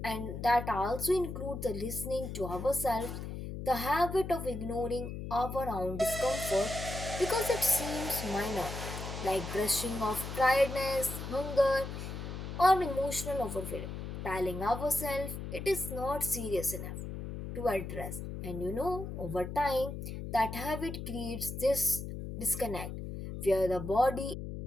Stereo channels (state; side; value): noise; left; hum, 7 dB below the sound